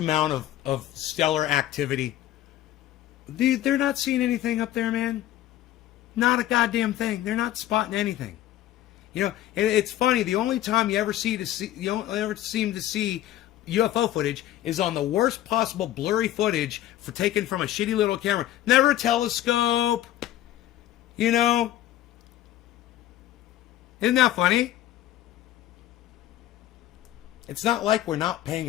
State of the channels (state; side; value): quieter; right; 13.4 dB